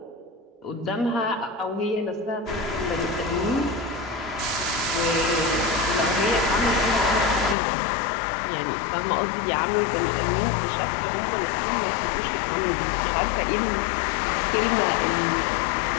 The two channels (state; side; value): drops out; right; at 7.6 s